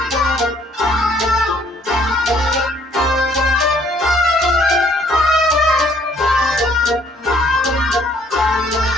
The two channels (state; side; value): normal; both; correlation 0.63